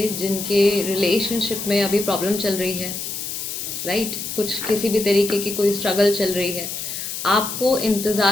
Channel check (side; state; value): left; noise; hiss, 6 dB below the sound